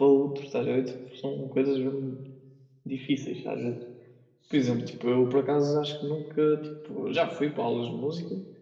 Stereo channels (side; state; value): both; identical; correlation 1.00